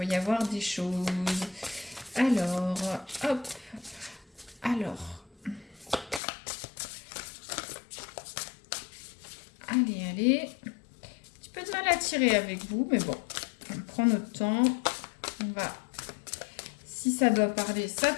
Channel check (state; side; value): drops out; right; at 6.2 s